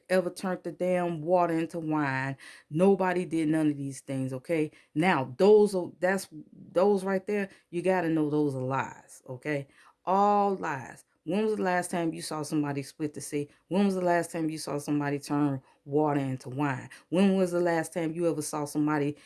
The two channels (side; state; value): both; identical; correlation 1.00